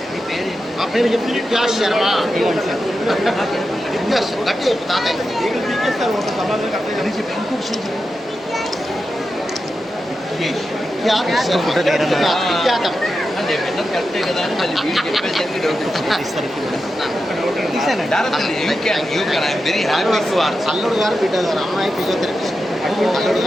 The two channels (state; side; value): normal; both; correlation 0.90